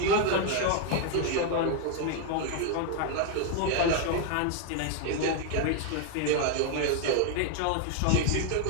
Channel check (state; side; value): different; both; correlation 0.00